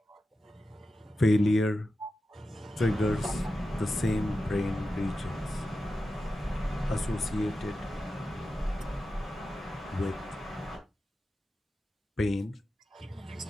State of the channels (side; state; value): both; normal; correlation 0.92